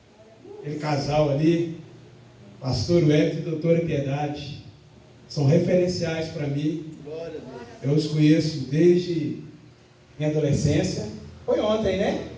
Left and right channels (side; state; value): both; identical; correlation 1.00